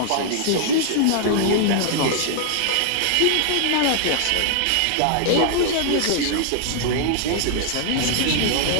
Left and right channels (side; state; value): both; different; correlation -0.01